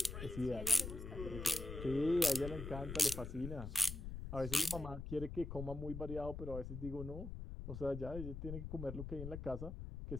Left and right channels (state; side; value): noise; left; rumble, 7 dB below the sound